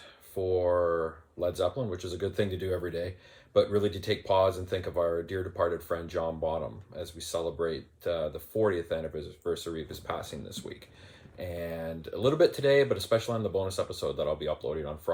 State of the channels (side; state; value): both; identical; correlation 1.00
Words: for Led Zeppelin, which is a good thing to do every day, but really to take pause and think of our dear departed friend John Bonham as we celebrate the 40th anniversary of his passing this week. And a little bit today, but especially on the bonus episode that I'll be uploading on